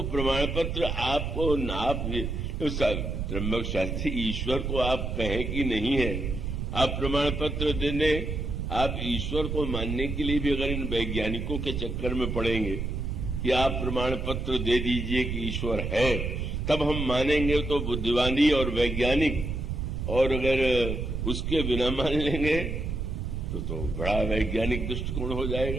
प्रमाण पत्र आपको आप त्र्यंबक शास्त्री ईश्वर को आप कहें कि नहीं है, आप प्रमाण पत्र देने, आप ईश्वर को मानने के लिए भी अगर इन वैज्ञानिकों के चक्कर में पड़ेंगे कि आप प्रमाण पत्र दे दीजिए कि ईश्वर है, तब हम मानेंगे तो बुद्धिमानी और वैज्ञानिक, और अगर उसके बिना मान लेंगे तो बड़ा वैज्ञानिक दृष्टिकोण हो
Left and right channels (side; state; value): right; noise; rumble, 3 dB below the sound